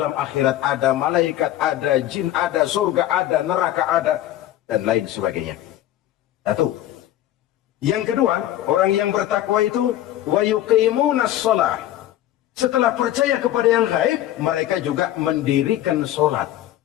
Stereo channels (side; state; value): right; quieter; 13.2 dB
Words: akhirat ada, malaikat ada, jin ada, surga ada, neraka ada, dan lain sebagainya. Satu. Yang kedua, orang yang bertakwa itu wa yuqimunas shalah. Setelah percaya kepada yang gaib, mereka juga mendirikan sholat.